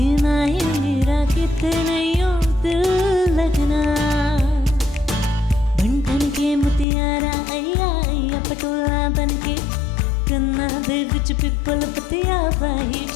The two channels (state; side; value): drops out; right; at 6.9 s